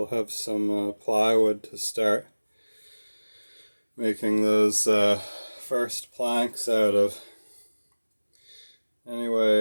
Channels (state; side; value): inverted; both; correlation -1.00